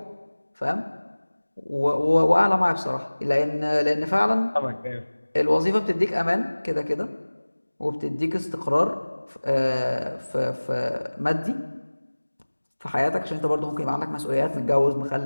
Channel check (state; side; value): inverted; both; correlation -1.00